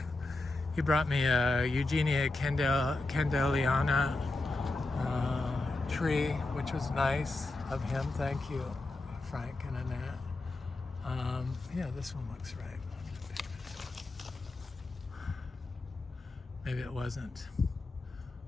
He brought me a Eugenia Candeliana tree, which was nice of him. Thank you, Frank and Annette. Yeah, this one looks right. I'm gonna pick this one. Maybe it wasn't.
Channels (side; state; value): right; quieter; 3.1 dB